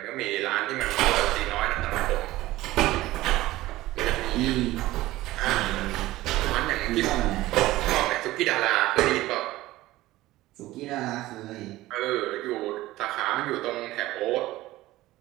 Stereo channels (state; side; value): quieter; left; 17.1 dB